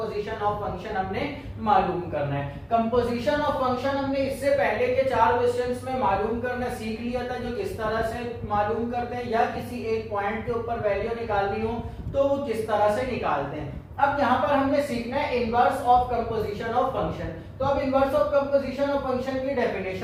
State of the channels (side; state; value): both; identical; correlation 1.00